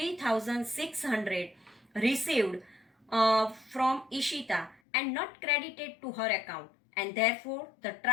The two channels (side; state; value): right; drops out; at 4.8 s